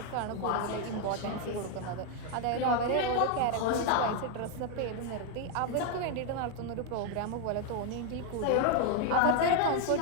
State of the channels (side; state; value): both; different; correlation 0.01